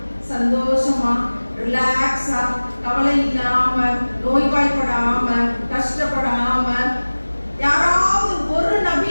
சந்தோஷமா, ரிலாக்ஸா, கவலை இல்லாம, நோய்வாய்ப்படாம, கஷ்டப்படாம, யாராவது ஒரு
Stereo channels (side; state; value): both; inverted; correlation -1.00